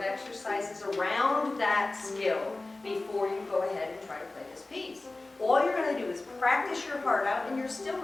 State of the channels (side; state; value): right; quieter; 3.1 dB